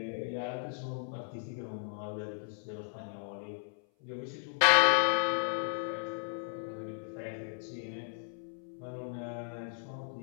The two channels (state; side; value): silent; right; 54 dB below the other